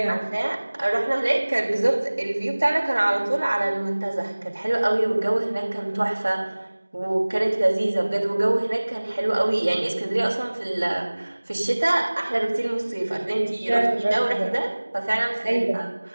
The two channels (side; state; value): both; inverted; correlation -1.00